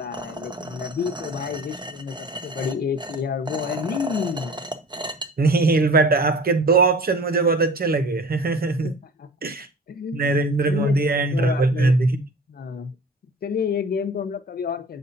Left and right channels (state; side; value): normal; both; correlation 0.42